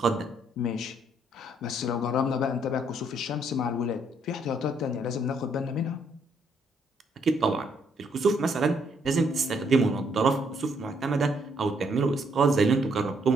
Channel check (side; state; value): both; normal; correlation 0.70